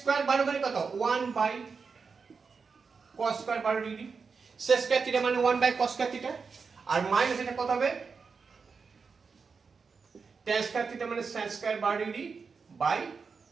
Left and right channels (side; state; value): left; quieter; 5.2 dB